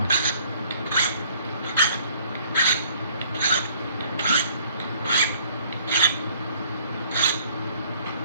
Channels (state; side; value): inverted; both; correlation -0.59